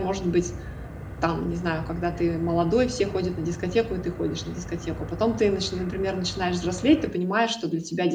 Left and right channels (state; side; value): identical; both; correlation 1.00